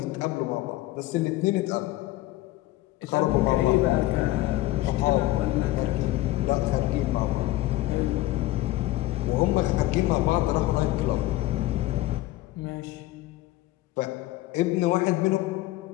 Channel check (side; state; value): right; quieter; 16.9 dB